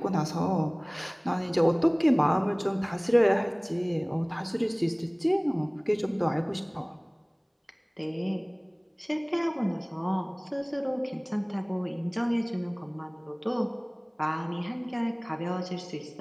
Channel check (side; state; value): both; identical; correlation 1.00